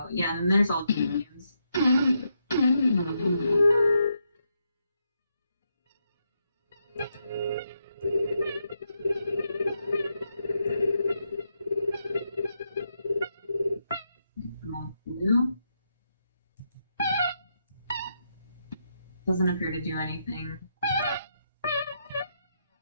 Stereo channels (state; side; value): inverted; both; correlation -0.81